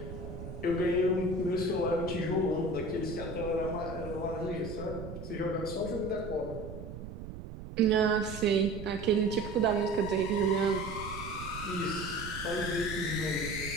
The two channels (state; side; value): noise; right; rumble, 10 dB below the sound